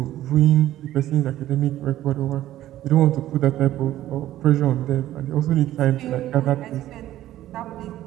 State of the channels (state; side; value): quieter; left; 13.7 dB